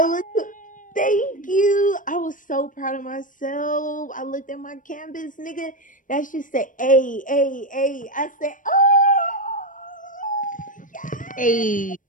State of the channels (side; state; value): right; late; 0.38 ms